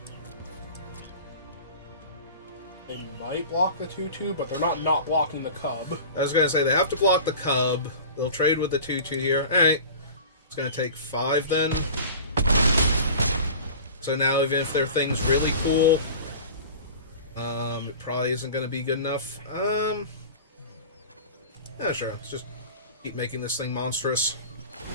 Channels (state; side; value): inverted; both; correlation -0.38